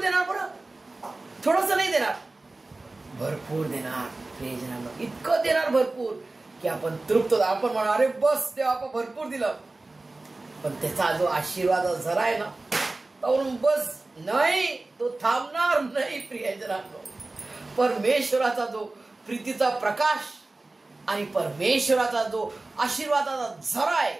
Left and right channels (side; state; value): left; quieter; 3.1 dB